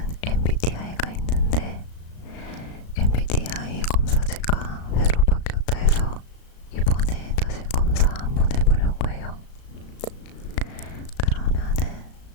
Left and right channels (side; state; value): right; late; 35 ms